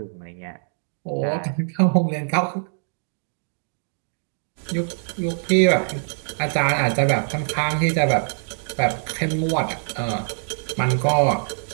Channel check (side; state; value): left; silent; digital silence